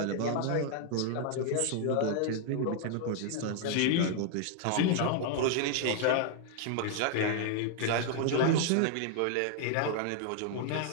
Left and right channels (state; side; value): different; both; correlation 0.00